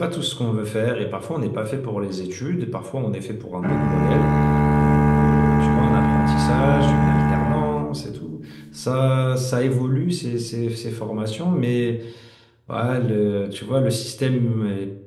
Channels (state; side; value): identical; both; correlation 1.00